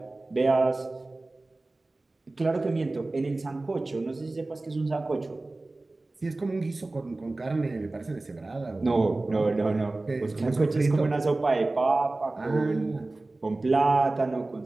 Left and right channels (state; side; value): quieter; left; 3.1 dB